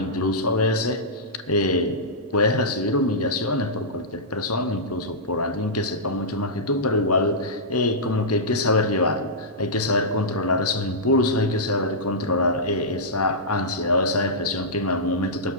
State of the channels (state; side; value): normal; both; correlation -0.14